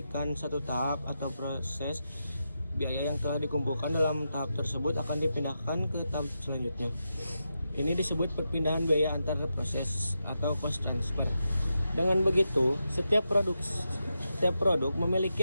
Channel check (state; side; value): inverted; both; correlation -0.87